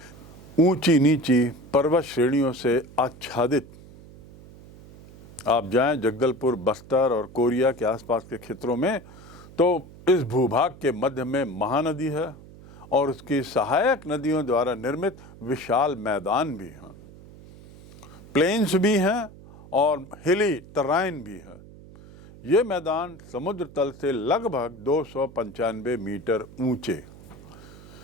ऊंची नीची पर्वत श्रेणियों से आच्छादित आप जाएं जगदलपुर, बस्तर और कोरिया के आसपास के क्षेत्रों में, तो इस भूभाग के मध्य में महानदी है और उसकी सहायक नदियों द्वारा निर्मित विशाल मैदान भी हैं, प्लेन्स भी हैं और हिली टराइन भी है। ये मैदान समुद्र तल से लगभग 295 मीटर ऊंचे।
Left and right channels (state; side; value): noise; right; hum, 19 dB below the sound